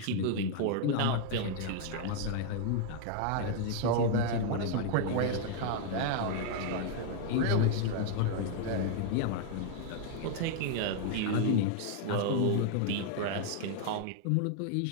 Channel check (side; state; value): both; different; correlation 0.00